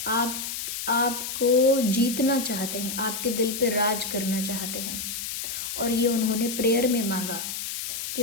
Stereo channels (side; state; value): left; noise; hiss, 5 dB below the sound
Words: आपको जीतना चाहते हैं, आपके दिल पे राज करना चाहते हैं। और ये उन्होंने प्रेयर में मांगा कि